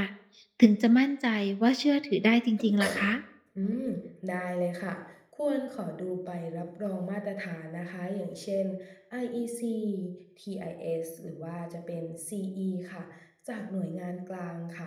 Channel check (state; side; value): identical; both; correlation 1.00